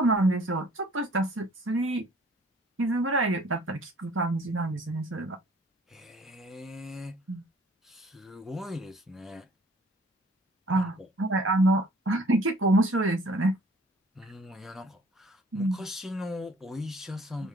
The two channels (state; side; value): normal; both; correlation 0.55